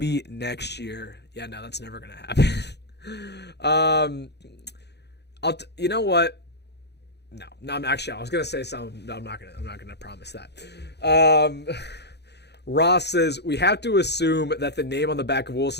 next year. Yeah, no, that's never going to happen. You know what? No, I was gonna say something. No, I'm not gonna promise that. Ross says we have to assume that the name on the back of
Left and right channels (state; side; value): late; right; 0.49 ms